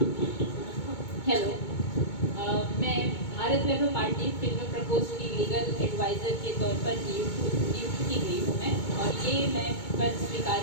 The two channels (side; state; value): right; late; 2.2 ms